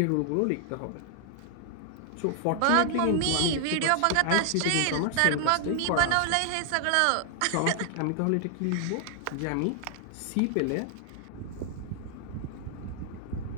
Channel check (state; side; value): different; both; correlation 0.00